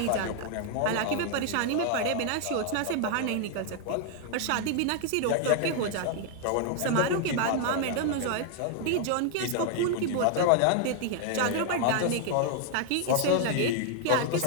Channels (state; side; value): different; both; correlation 0.00